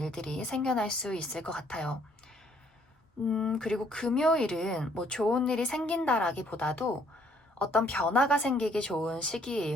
생겨날 수 있을 것 같아요. 그리고 금요일은 좋은 일이 생긴다라기보다도 어떤 변화가 생기기 좋은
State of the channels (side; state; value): both; normal; correlation 0.64